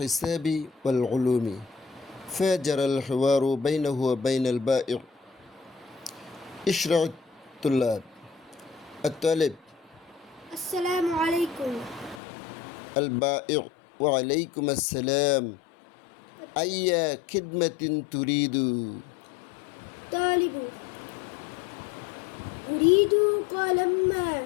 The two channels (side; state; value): right; drops out; at 12.2 s